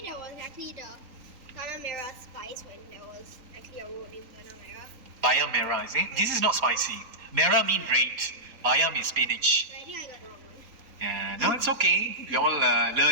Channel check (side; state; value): left; late; 3.8 ms